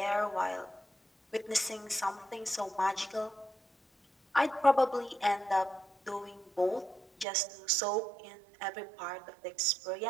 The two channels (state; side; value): drops out; left; at 7.2 s